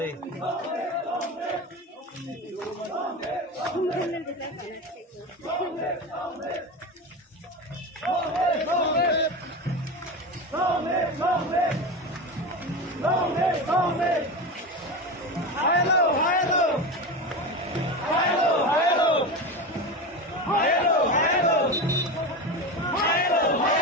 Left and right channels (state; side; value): normal; both; correlation 0.23